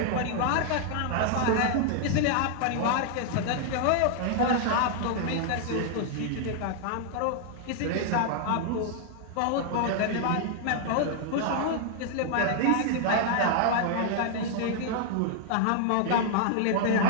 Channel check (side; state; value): both; different; correlation -0.01